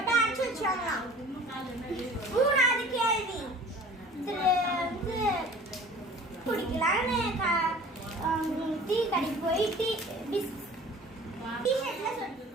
அடைச்சு வச்சாங்களாம். மூணாவது கேள்வி. குடிக்கலான்னு டீ கடைக்கு போய் டீ-ஷர்ட்ல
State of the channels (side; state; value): both; normal; correlation 0.46